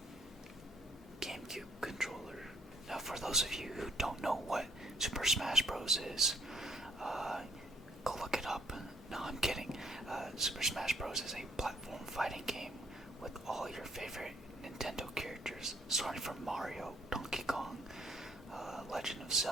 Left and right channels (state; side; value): normal; both; correlation 0.66